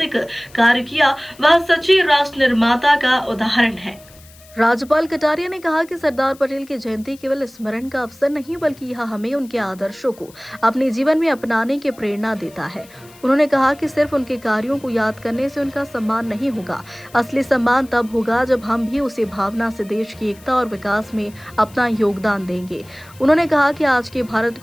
कार्य किया, वह सच्चे राष्ट्र निर्माता का उदाहरण है। राज्यपाल कटारिया ने कहा कि सरदार पटेल की जयंती केवल स्मरण का अवसर नहीं, बल्कि यह हमें उनके आदर्शों को अपने जीवन में अपनाने की प्रेरणा देता है। उन्होंने कहा कि सिर्फ उनके कार्यों को याद करने से उनका सम्मान नहीं होगा, असली सम्मान तब होगा जब हम भी उसी भावना से देश की एकता और विकास में अपना योगदान देंगे। उन्होंने कहा कि आज के भारत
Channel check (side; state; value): left; noise; hiss, 24 dB below the sound